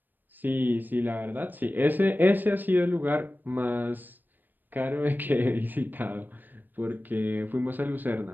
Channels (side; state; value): left; late; 0.090 ms